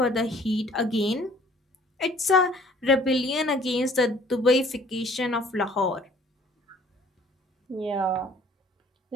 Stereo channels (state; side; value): normal; both; correlation 0.56